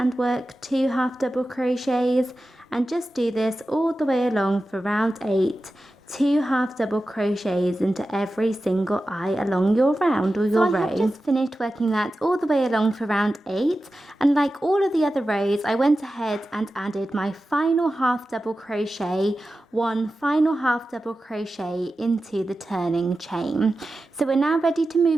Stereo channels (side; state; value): both; normal; correlation 0.93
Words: work 2 half double crochets, and just do this all the way along for round 8 2 half double crochets into every single eye along your round or your row. I have just finished working that all the way along for round 8, and like all of the other rows, I went ahead and added my final half double crochet, one final half double crochet into the turning chain. So we're now ready to